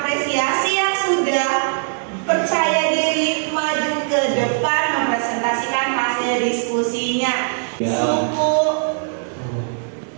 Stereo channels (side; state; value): left; silent; digital silence